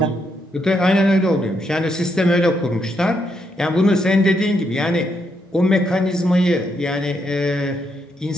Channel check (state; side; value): normal; both; correlation 0.78